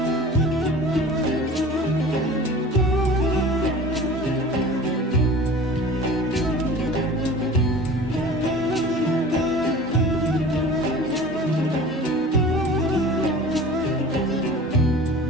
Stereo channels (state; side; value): normal; both; correlation 0.40